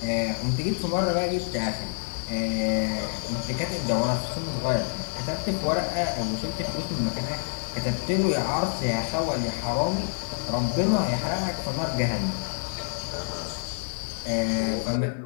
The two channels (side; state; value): right; silent; digital silence